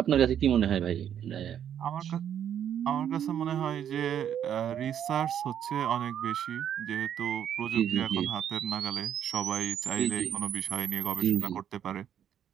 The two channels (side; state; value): left; quieter; 9.5 dB